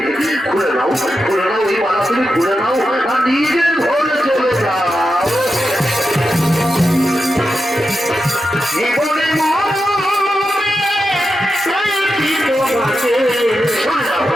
খুলে নাও এই মালা, তুমি খুলে নাও আর নিজের ঘরে চলে যাও।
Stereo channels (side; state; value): both; normal; correlation 0.88